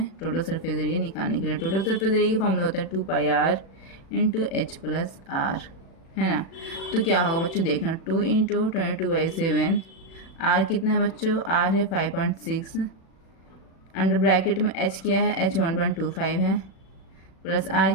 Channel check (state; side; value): late; right; 36 ms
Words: टोटल सरफेस एरिया निकालने के लिए। टोटल सरफेस एरिया का फॉर्मूला होता है 2πr × h + r, है ना। तो क्या होगा बच्चों देखना 2 × 22/7, r कितना है बच्चों, r है 5.6, अंडर ब्रैकेट में h क्या है h 1.25 है, प्लस